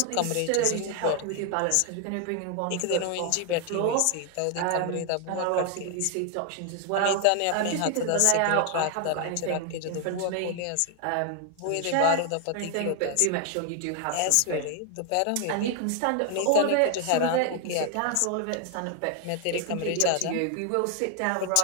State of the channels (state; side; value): different; both; correlation 0.00